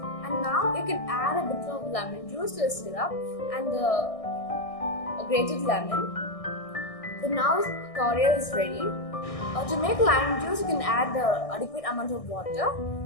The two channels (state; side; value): late; right; 1.6 ms